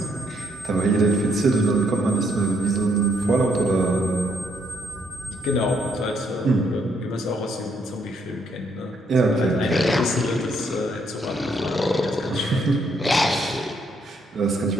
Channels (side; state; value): both; normal; correlation 0.72